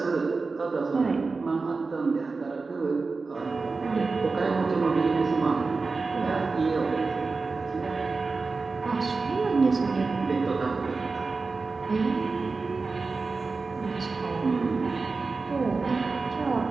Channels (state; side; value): quieter; left; 4.1 dB